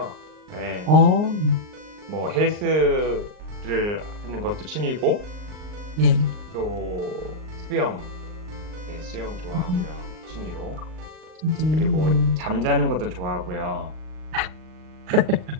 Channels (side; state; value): left; late; 39 ms